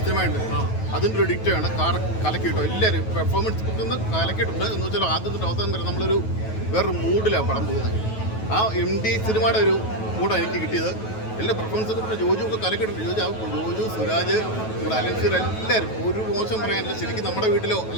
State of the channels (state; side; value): late; right; 9.2 ms